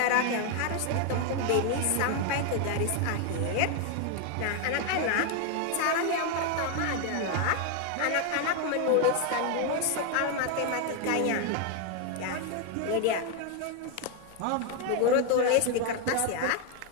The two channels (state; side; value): different; both; correlation 0.01